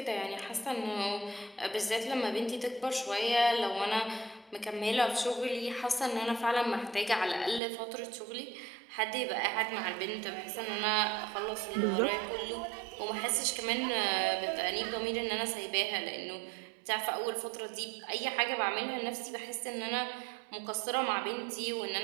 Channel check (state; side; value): drops out; left; at 7.6 s